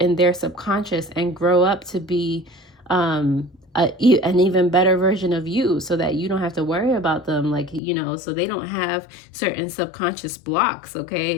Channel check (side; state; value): right; drops out; at 7.8 s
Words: their subconscious and grow up to be an even better version of you, so that you don't have to worry about them, like, you know, so they don't have certain subconscious blocks. Okay,